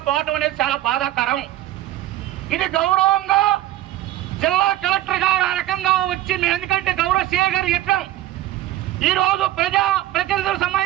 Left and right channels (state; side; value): quieter; left; 14.4 dB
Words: పోవడం అనేది చాలా బాధాకరం. ఇది గౌరవంగా జిల్లా కలెక్టర్ గారు ఆ రకంగా వచ్చి ఎందుకంటే గౌరవ సీఏ గారు చెప్పాం, ఈ రోజు ప్రజలకు